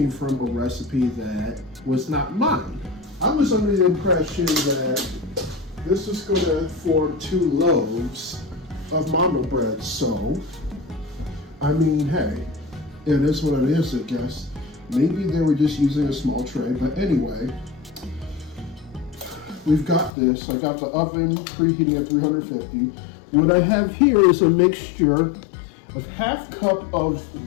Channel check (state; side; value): drops out; right; at 20.1 s